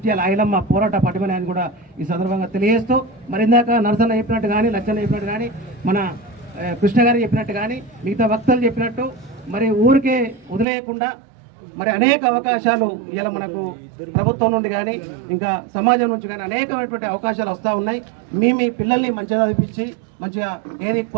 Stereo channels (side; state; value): left; drops out; at 10.7 s